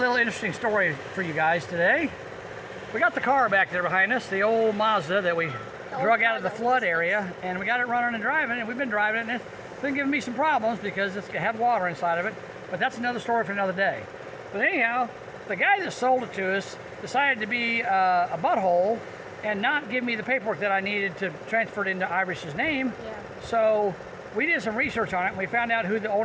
interesting story for you guys today. We got the car back there behind us, the old Mazda that we drug out of the flood area, and we got it running and driving, and we've been driving it, and it's been giving me some problems because it's had water inside of it, but that's another story for another day. But anyhow, the guy that sold it to us decided to be a butthole and not give me the paperwork that I needed to transfer it into Irish's name. Yeah. So we did some research on it, and we found out who the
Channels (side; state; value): both; identical; correlation 1.00